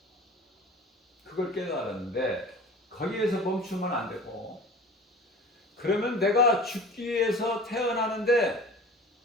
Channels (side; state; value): both; normal; correlation 0.40